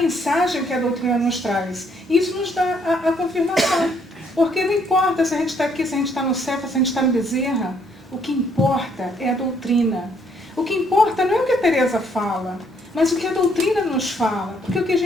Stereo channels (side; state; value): both; normal; correlation 0.68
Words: que a doutrina nos traz. E isso nos dá a confirmação. Porque não importa se a gente está aqui, se a gente está no céu, se a gente está no Bezerra. O que importa é a doutrina. O que importa não é o que a Teresa fala, mas o que a doutrina nos fala. Porque o que a